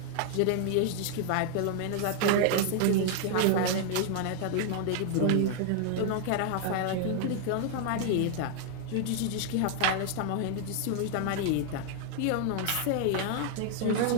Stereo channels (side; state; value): both; different; correlation 0.00